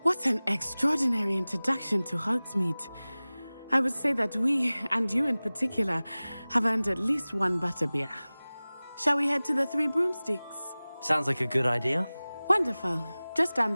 What an extraordinary introduction to Hogsmeade. I would say that we, and you in particular, have earned at least one butterbeer. Shall we head to the Three Broomsticks? Sounds like a good idea. Wonderful. Just down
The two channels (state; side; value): inverted; both; correlation -0.99